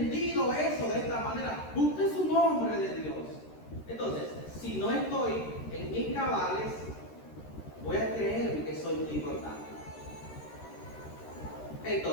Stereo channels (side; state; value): right; late; 13 ms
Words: eso de esta manera, usted es un hombre de Dios. Entonces, si no estoy en mis cabales, voy a creer que soy muy importante.